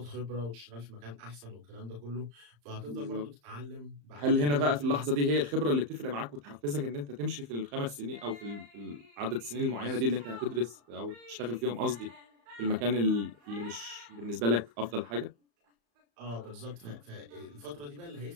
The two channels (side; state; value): left; late; 35 ms